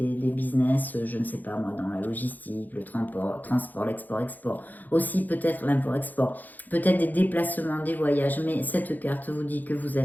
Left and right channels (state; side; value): late; right; 0.084 ms